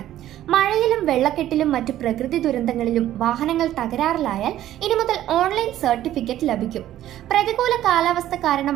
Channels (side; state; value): left; quieter; 12.9 dB